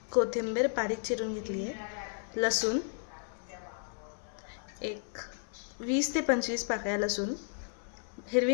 कोथिंबीर बारीक चिरून घेतली आहे, लसूण एक 20 ते 25 पाकळ्या लसूण, हिरवी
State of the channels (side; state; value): right; silent; 55 dB below the other